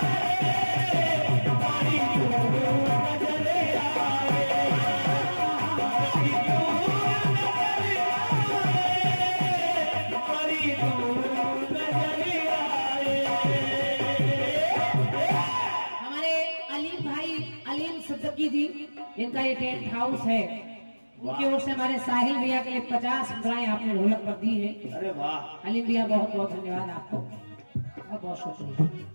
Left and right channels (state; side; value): inverted; both; correlation -1.00